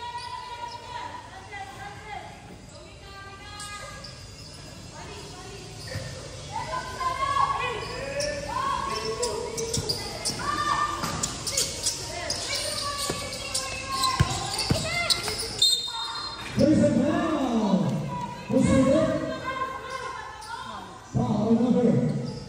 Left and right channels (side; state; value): both; identical; correlation 1.00